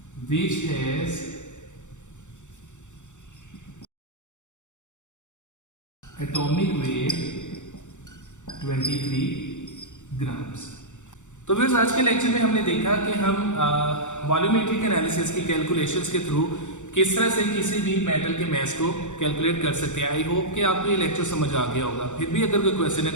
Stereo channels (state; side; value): late; right; 0.85 ms